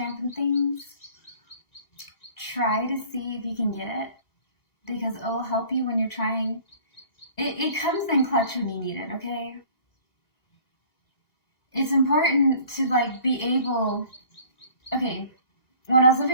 and things, try to see if you can get it because it will help you when you're trying. It comes in clutch when you need it, okay? It's important to like be able. Okay, when I was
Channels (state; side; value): late; right; 1.9 ms